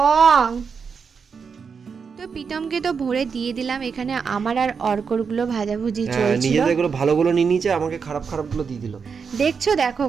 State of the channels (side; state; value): left; quieter; 5.9 dB